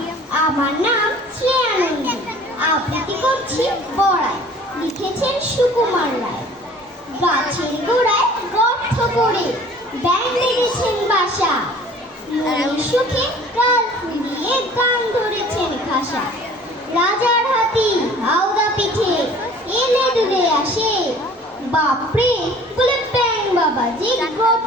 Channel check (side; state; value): both; normal; correlation 0.49